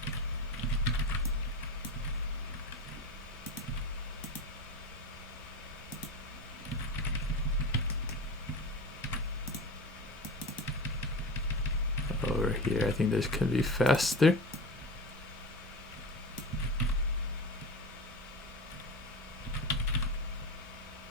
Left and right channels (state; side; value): normal; both; correlation 0.26